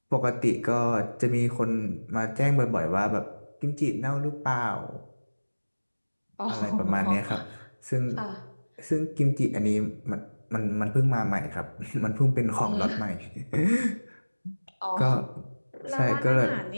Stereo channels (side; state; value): both; inverted; correlation -1.00